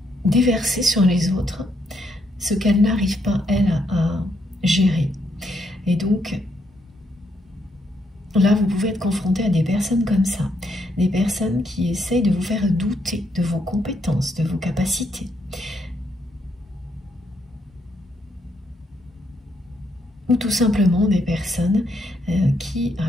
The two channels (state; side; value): normal; both; correlation 0.75